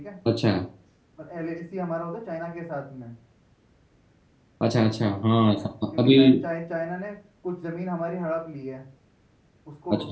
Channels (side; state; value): both; identical; correlation 1.00